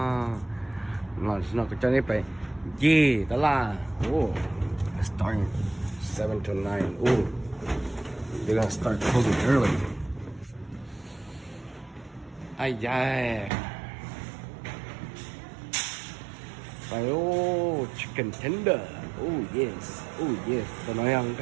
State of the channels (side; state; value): left; drops out; at 13.5 s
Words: nó có cho nên phải gì đó là starting 7 to 9 they're gonna start closing early ai da phải chicken tender yes tôi nói rằng